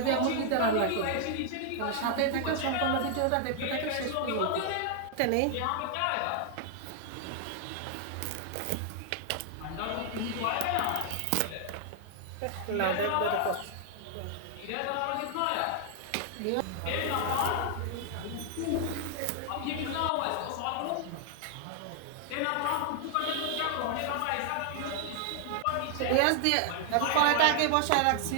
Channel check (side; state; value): both; different; correlation 0.00